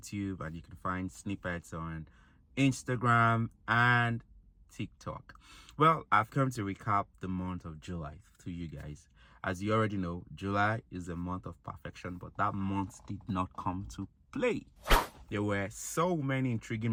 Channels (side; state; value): both; identical; correlation 1.00